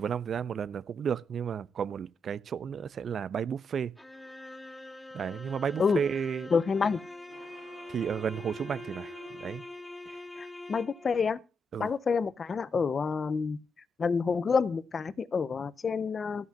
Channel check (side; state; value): both; normal; correlation 0.82